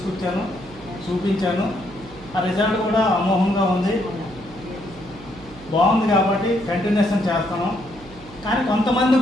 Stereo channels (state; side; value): noise; right; hum, 20 dB below the sound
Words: చూపించాను. ఆ రిజల్ట్ కూడా అమోఘంగా ఉంది, బాగుంది. కాబట్టి కంటిన్యూషన్ చేస్తాను. కానీ